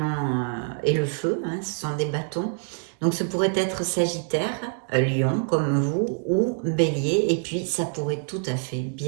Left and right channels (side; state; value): left; silent; 61 dB below the other